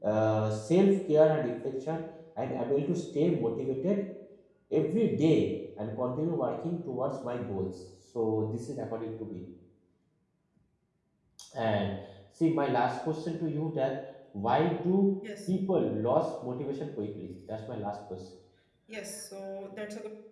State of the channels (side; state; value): both; identical; correlation 1.00